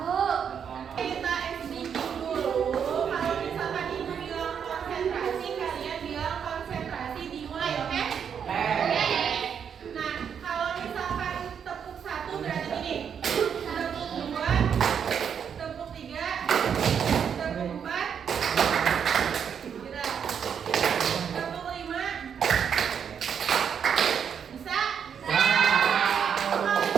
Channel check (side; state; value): left; quieter; 7.6 dB